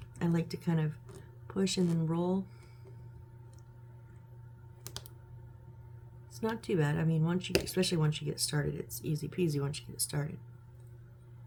I like to kind of push and then roll. It's not too bad. I mean, especially once you get started, it's easy peasy once you get started.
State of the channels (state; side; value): identical; both; correlation 1.00